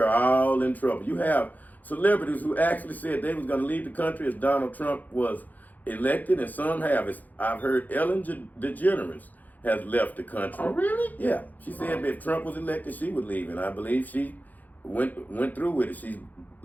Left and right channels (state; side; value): late; right; 0.082 ms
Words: all in trouble. You have celebrities who actually said they was going to leave the country as Donald Trump was elected, and some have. I've heard Ellen DeGeneres has left the country. Oh, really? Yeah. She said if Trump was elected, she would leave, and I believe she went through with it. She's